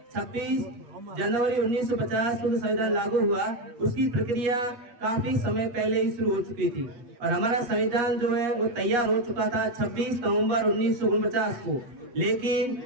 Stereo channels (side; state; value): left; late; 8.4 ms